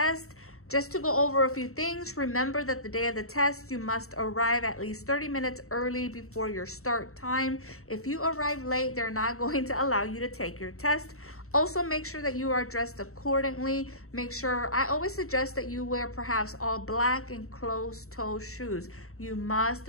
Just to go over a few things, remember that the day of the test, you must arrive at least 30 minutes early before your start time. If you arrive late, they're not going to allow you to take your test. Also, make sure that you are dressed accordingly. Make sure, I always suggest that you wear perhaps all black and closed-toe shoes. You must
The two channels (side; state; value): right; late; 0.63 ms